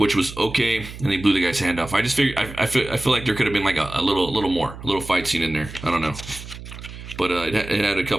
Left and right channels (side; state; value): right; noise; hum, 13 dB below the sound